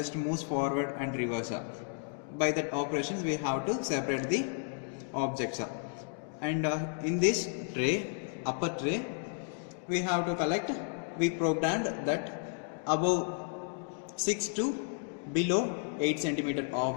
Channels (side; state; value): right; silent; 56 dB below the other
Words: moves forward and reverse. By that operations we have to separate the objects. And in this tray, upper tray, we have to collect, we programmed that above 6 to below 8 centimeter